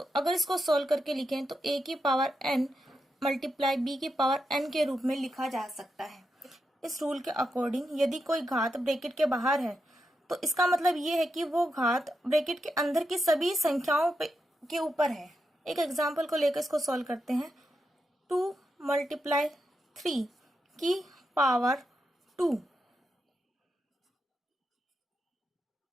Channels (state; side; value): normal; both; correlation 0.85